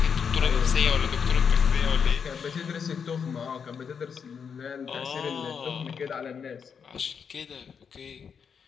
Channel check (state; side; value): quieter; right; 6.6 dB